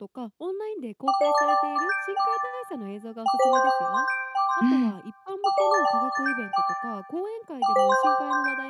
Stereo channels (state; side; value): identical; both; correlation 1.00